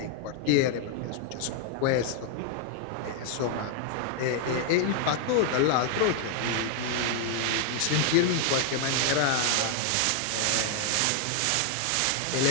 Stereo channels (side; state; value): both; different; correlation 0.00